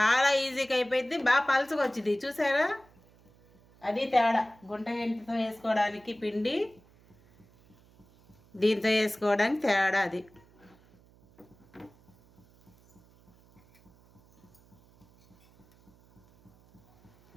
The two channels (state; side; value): noise; right; hum, 29 dB below the sound